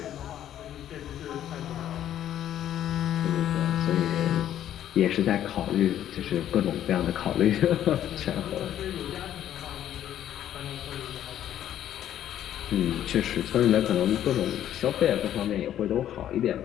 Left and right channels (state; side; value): quieter; right; 11.2 dB